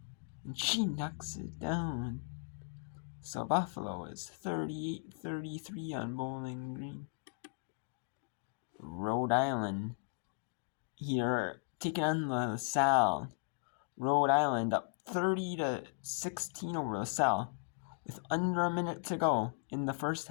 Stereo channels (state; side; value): silent; right; digital silence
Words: And she knocks it down. So Buffalo is 38-33 on Bowling Green. Rhode Island here taking on LaSalle. Rhode Island up 30-16 over LaSalle with under a minute to go in the first